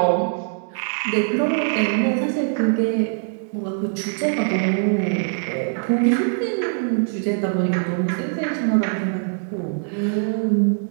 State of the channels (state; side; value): silent; left; digital silence